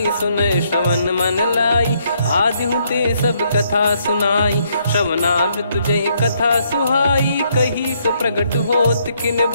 सुनय श्रवण मन लाई, आदिहु ते सब कथा सुनाई। श्रवणाब तुझे कथा सुहाई, कही सो प्रगट होत किन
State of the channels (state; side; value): inverted; both; correlation -0.72